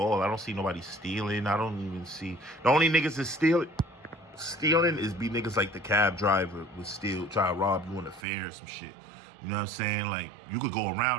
I don't see nobody stealing. I don't even see. The only niggas that stealing is be niggas like the cab driver would steal, try to rob you on the fair or some shit. You know what I'm saying? Like, you could go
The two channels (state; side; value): drops out; left; at 8.2 s